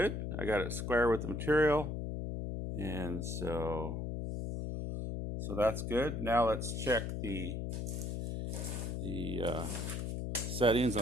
I got it square with the material, and so that's good. Now let's check the settings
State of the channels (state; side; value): noise; left; hum, 3 dB below the sound